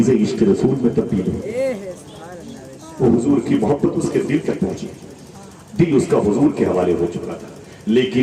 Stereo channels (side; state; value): both; identical; correlation 1.00